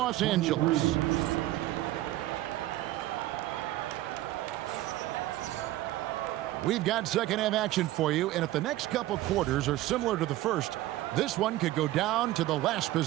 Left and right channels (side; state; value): left; quieter; 15.9 dB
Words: Angeles. We've got second half action for you, and if the next couple quarters are similar to the first, this one could go down to the last